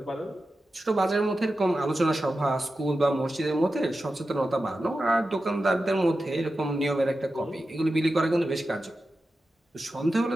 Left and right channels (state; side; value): normal; both; correlation 0.92